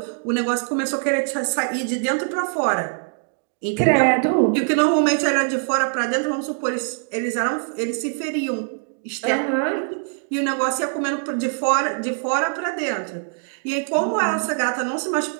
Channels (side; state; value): left; silent; 62 dB below the other